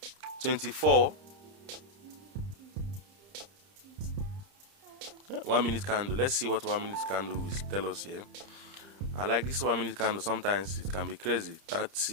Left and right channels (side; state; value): left; late; 30 ms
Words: 24. 1 minute candle. Let's see what 1 minute candle will tell us here. I like this 1 minute candle. Sometimes it can be crazy.